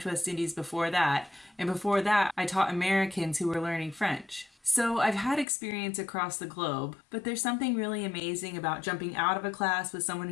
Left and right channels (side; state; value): right; drops out; at 5.5 s